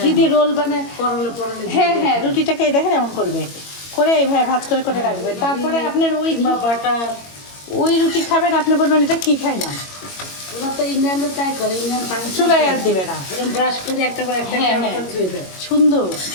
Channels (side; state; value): right; late; 22 ms